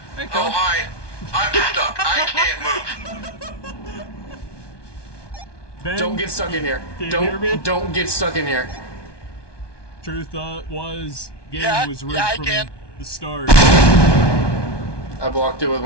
Hey, Oh, Cole. hi. I'm stuck. I can't move. Ben, Don't get stuck in here. Can you hear me? Don't get stuck in here. Truth was, game Yeah, was rigged yeah, I from can. the start. I blocked it with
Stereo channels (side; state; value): right; late; 1.2 ms